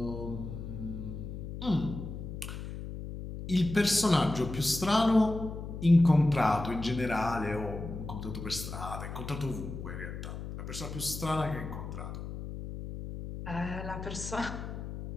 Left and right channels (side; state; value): left; noise; hum, 8 dB below the sound